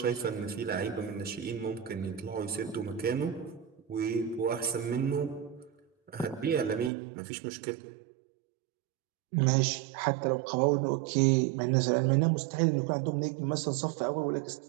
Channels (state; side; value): drops out; left; at 6.9 s